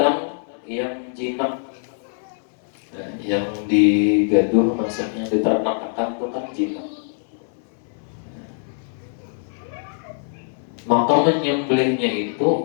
yang jinak. Nah, yang digaduh maksudnya diternak-ternak itu kan jinak. Maka menyembelihnya itu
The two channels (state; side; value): silent; right; 64 dB below the other